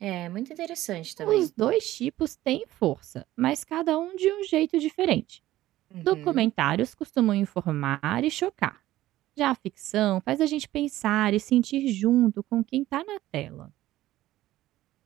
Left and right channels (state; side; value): quieter; left; 15.2 dB